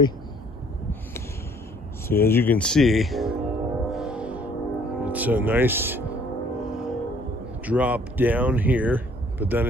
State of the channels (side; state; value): both; normal; correlation 0.59